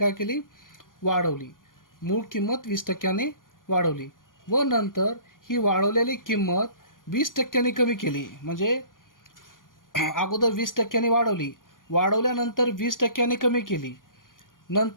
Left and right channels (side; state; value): right; late; 0.90 ms